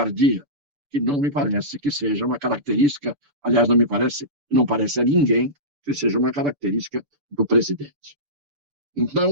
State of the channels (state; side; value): late; left; 6.9 ms